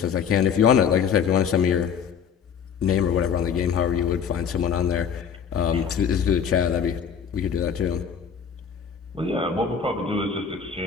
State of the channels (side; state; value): right; quieter; 7.2 dB